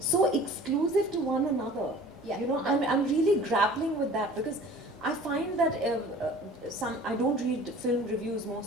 exclusive to one another? I'm really grappling with that, because I find that I don't read film reviews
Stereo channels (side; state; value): both; normal; correlation 0.46